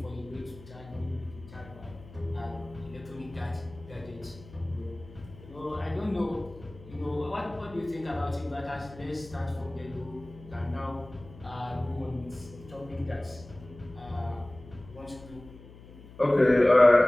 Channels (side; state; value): left; noise; hum, 19 dB below the sound